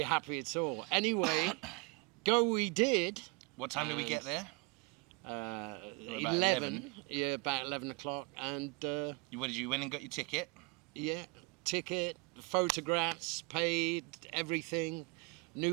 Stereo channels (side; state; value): left; quieter; 28.1 dB